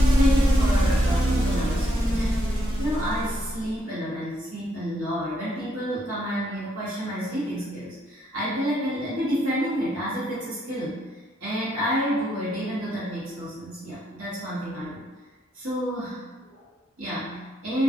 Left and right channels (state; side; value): normal; both; correlation 0.75